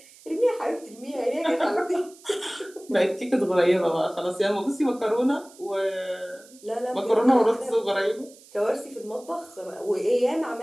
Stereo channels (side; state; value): right; noise; hiss, 24 dB below the sound